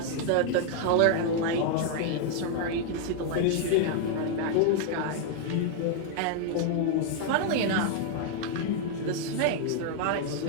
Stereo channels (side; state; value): both; different; correlation 0.00